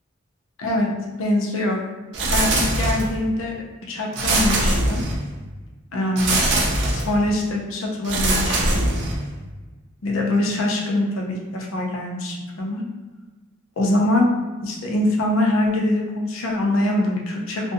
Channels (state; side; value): normal; both; correlation 0.57